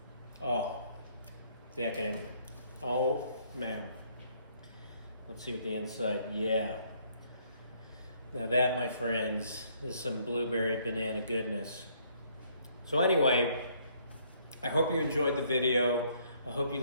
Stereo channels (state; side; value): inverted; both; correlation -0.66